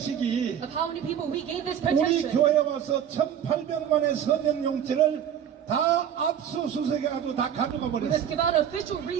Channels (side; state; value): left; quieter; 9.2 dB